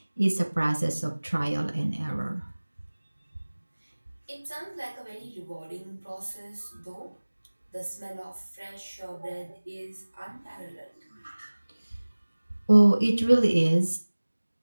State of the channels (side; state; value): both; inverted; correlation -1.00